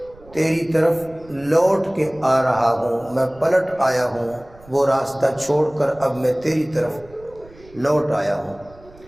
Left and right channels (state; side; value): noise; right; rumble, 24 dB below the sound